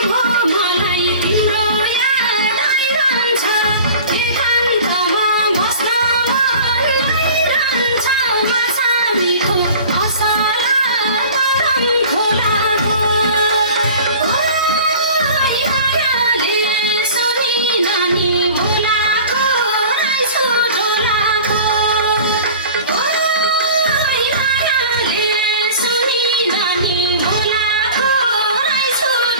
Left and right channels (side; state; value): both; inverted; correlation -0.41